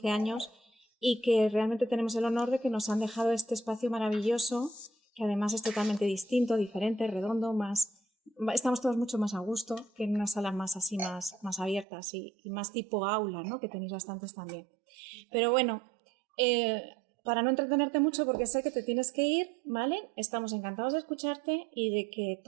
años y que realmente tenemos el honor de que nos han dejado este espacio maravilloso, que además es totalmente distinto, diferente, redondo, estamos todos mucho más a gusto que en unas salas más así, más abiertas y más tipo aula, ¿no? Que tenéis bastantes también. Pero bueno, para no entretenerte mucho, porque sé que te tienes que ir, ¿vale? Estamos encantados de escucharte y de que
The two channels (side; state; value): left; drops out; at 11.9 s